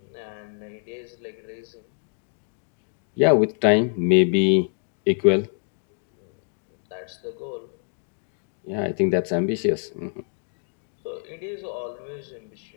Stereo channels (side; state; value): right; silent; digital silence